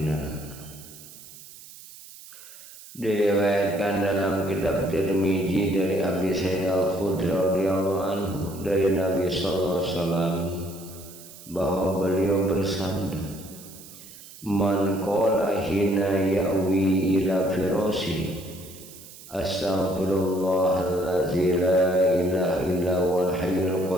Diriwayatkan dalam kitab Tirmizi dari Abi Sa'id Al-Khudri radhiyallahu anhu dari Nabi sallallahu alaihi wasallam bahwa beliau bersabda, "Man qala hina ya'wi ila firasi astaghfirullahallazi la ilaha illa huwal hayyul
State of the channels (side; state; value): right; noise; hiss, 18 dB below the sound